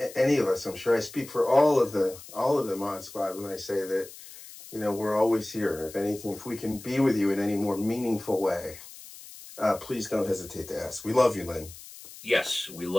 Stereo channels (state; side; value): noise; left; hiss, 17 dB below the sound